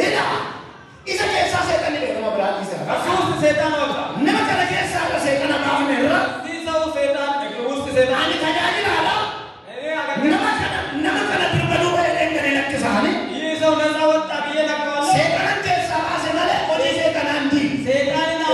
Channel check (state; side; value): identical; both; correlation 1.00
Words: ኢዘ ከሳ ሰይጣን ነው ብራል ይሰራ ከሱስ ሰይጣን ወጣ ነመከለ ከሳ ሰይጣን ማሁን ነው ሰው ሰይጣን ውስጥ ሰይጣን አኒ ታጃጅል አላ ነመከለ ድርበሉ ወይደን ለክሳኒ ይህ ሰው ነፃ ወጣ ብዬ ነግረዋለሁ ሰይጣን ከሳ ባሰመለ ኦጂ ሰይጣን አንዲ ሰይጣንን